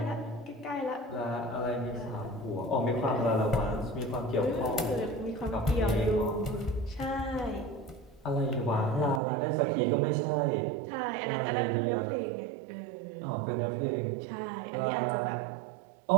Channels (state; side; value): drops out; left; at 9.2 s